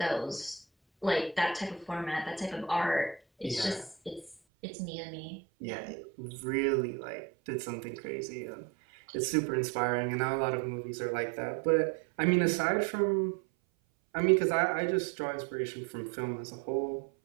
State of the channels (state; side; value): drops out; left; at 4.4 s